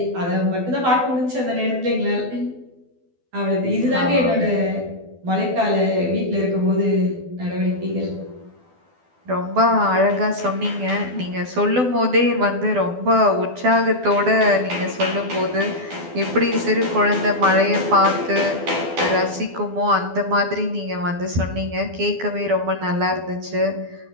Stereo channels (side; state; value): left; late; 12 ms